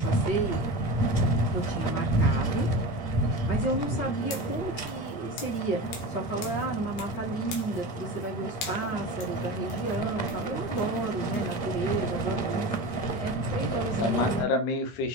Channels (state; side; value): late; right; 13 ms